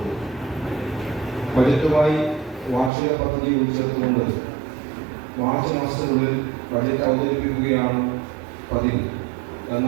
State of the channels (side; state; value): left; drops out; at 2.9 s